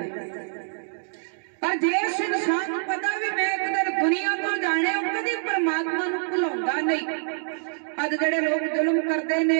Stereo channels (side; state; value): left; silent; digital silence